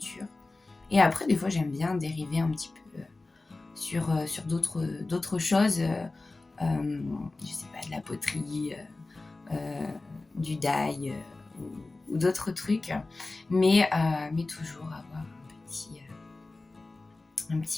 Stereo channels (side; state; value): right; quieter; 3.3 dB